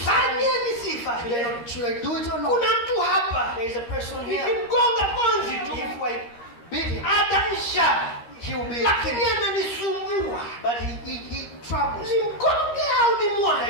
nisifanye? Should I do it or not? Kuna mtu hapa. There is a person here. Nikimgonga konzi tu. If I beat him, ataisha. He will be. Lakini ananisumbua. But he troubles. Nimgonge au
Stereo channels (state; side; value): late; right; 13 ms